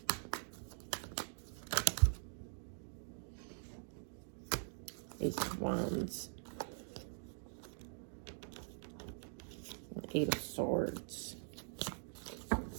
Ace of Wands. Eight of Swords. I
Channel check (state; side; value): silent; left; digital silence